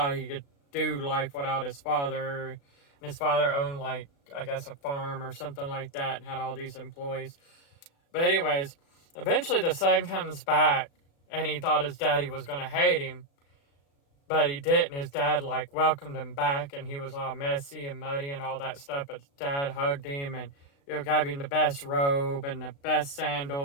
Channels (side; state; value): right; late; 36 ms